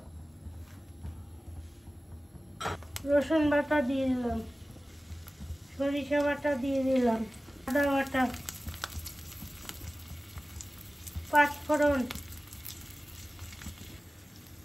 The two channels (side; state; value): both; normal; correlation 0.96